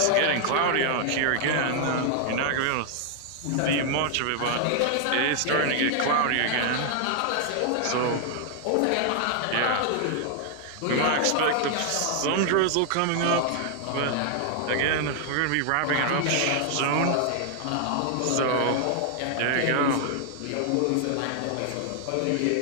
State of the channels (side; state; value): both; different; correlation 0.00